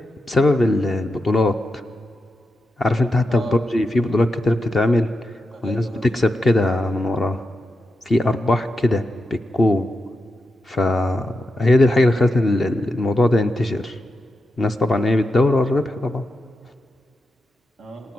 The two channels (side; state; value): both; normal; correlation 0.88